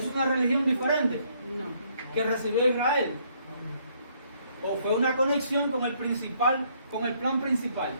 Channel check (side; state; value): both; inverted; correlation -0.68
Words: una religión diferente que recibió Israel. O fue una conexión con el plan principal.